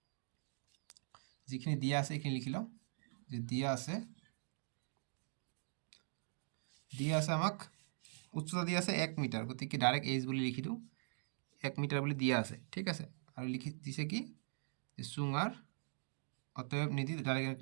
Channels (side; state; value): left; silent; digital silence